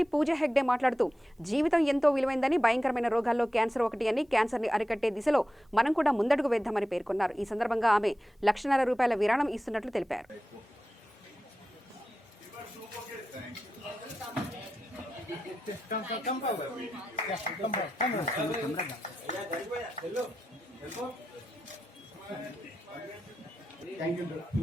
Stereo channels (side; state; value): both; normal; correlation 0.91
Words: పూజా హెగ్డే మాట్లాడుతూ జీవితం ఎంతో విలువైందని, భయంకరమైన రోగాల్లో క్యాన్సర్ ఒకటి అని, క్యాన్సర్ని అరికట్టే దిశలో మనం కూడా ముందడుగు వేద్దామని పేర్కొన్నారు. ఈ సందర్భంగా ఆమె ₹1,00,000 విరాళం ఇస్తున్నట్లు తెలిపారు. Thank you,